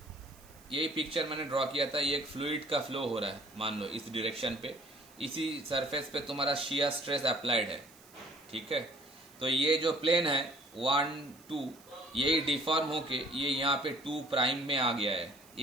यही पिक्चर मैंने ड्रॉ किया था. ये एक फ्लूइड का फ्लो हो रहा है, मान लो इस डायरेक्शन पे, इसी सरफेस पे तुम्हारा शियर स्ट्रेस अप्लाइड है, ठीक है. तो ये जो प्लेन है 1 2, यही डिफॉर्म होके ये यहाँ पे 2 प्राइम में आ गया है.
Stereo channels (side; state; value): right; noise; hiss, 25 dB below the sound